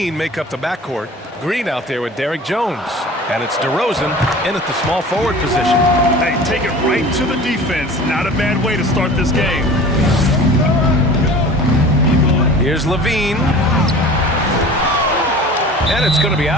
make up the backcourt. Green out there with Derrick Jones. And it's DeRozan in at the small forward position. Hey, take it right to the defense. Not a bad way to start this game. Here's Levine. And it's going to be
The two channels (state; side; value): normal; both; correlation 0.41